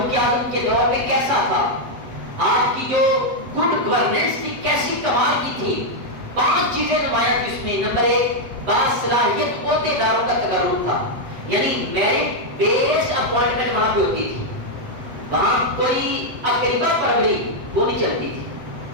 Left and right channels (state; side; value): late; left; 8.0 ms